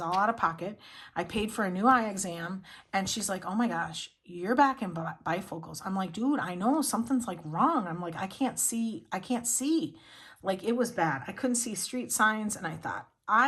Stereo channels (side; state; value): both; identical; correlation 1.00